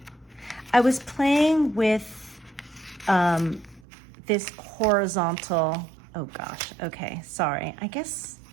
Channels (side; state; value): left; drops out; at 3.8 s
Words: I was playing with this horizontal, oh gosh, okay, sorry. I guess